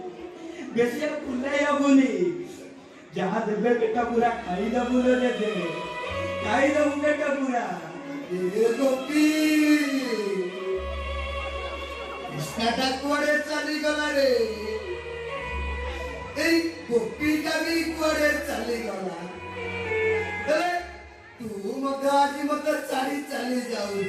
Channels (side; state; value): both; identical; correlation 1.00